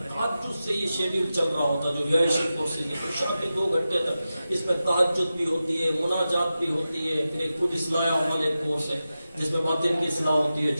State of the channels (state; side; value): inverted; both; correlation -0.92